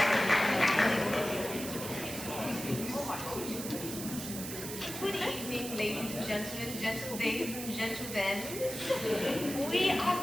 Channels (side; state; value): right; noise; hiss, 8 dB below the sound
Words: Good evening, ladies and gentlemen, gentle days and gentle thens.